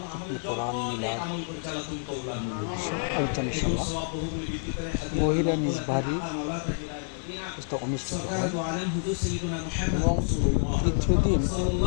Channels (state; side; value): silent; right; digital silence